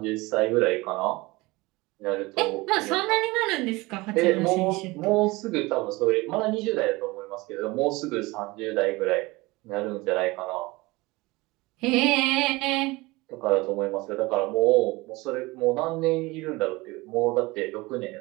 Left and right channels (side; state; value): left; quieter; 22.3 dB